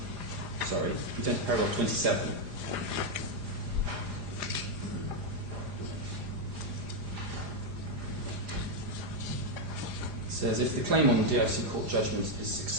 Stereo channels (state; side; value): late; left; 4.9 ms